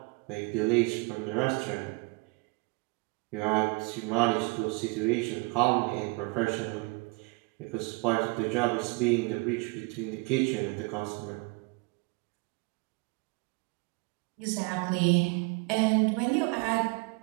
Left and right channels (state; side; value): quieter; left; 28.8 dB